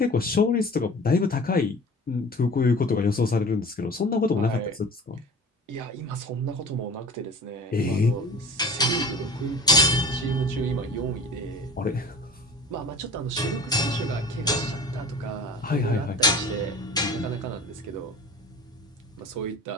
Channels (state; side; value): normal; both; correlation 0.41